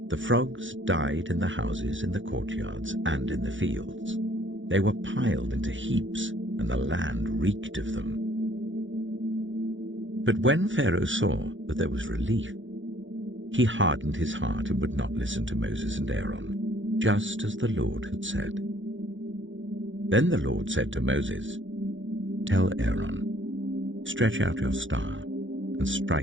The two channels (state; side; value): late; left; 0.56 ms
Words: The frogs died in the houses, in the courtyards, and in the fields. They were piled into heaps, and the land reeked of them. But when Pharaoh saw that there was relief, he hardened his heart and would not listen to Moses and Aaron, just as the Lord had said. Then the Lord said to Moses, "Tell Aaron, stretch out your staff and